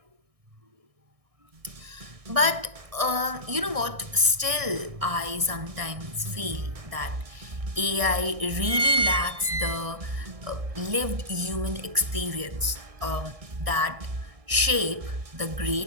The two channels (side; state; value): left; late; 1.6 ms